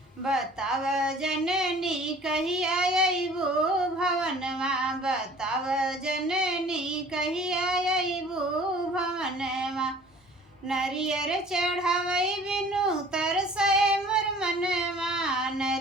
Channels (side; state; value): both; normal; correlation 0.49